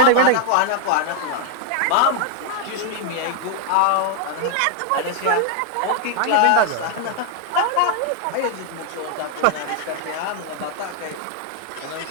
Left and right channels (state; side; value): different; both; correlation 0.00